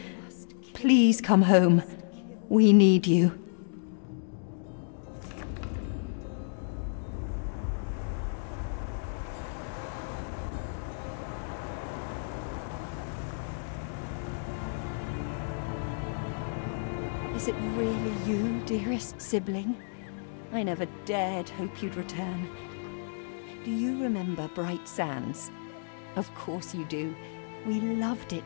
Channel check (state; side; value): silent; right; digital silence